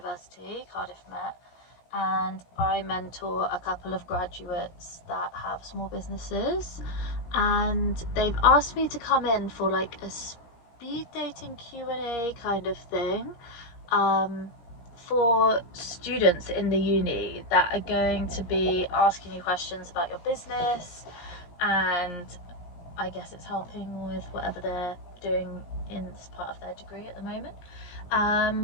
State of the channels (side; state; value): right; late; 17 ms